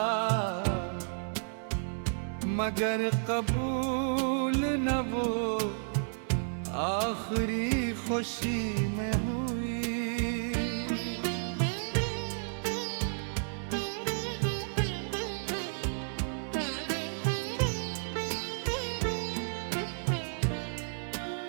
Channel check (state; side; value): silent; left; digital silence